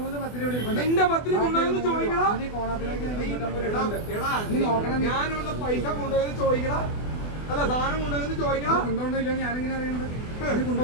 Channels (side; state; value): right; late; 24 ms